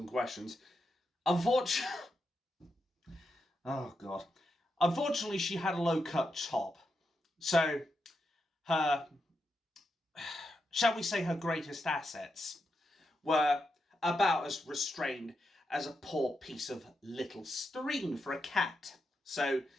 questions. Unfortunately, she had a low-cut top, so her, shall we say, her greatest assets were about as restrained as a poor piece of little string for a cat. So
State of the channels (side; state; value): both; normal; correlation 0.85